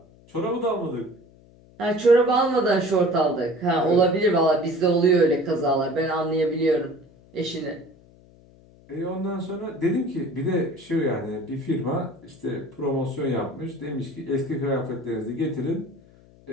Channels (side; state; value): left; noise; hum, 26 dB below the sound